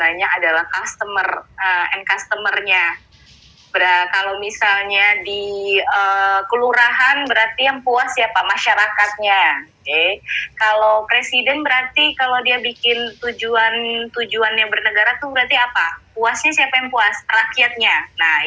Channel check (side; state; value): both; identical; correlation 1.00